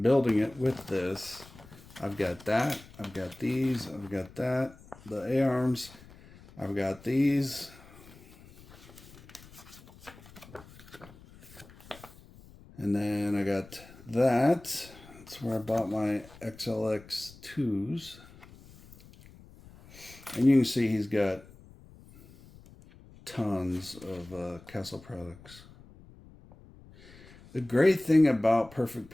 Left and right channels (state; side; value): noise; left; rumble, 22 dB below the sound